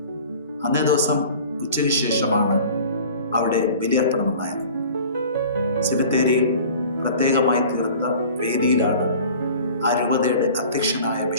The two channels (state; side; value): inverted; both; correlation -0.44